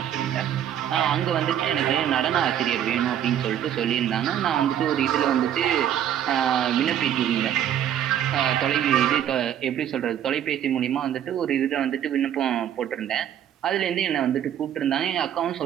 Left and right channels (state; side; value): quieter; left; 10.3 dB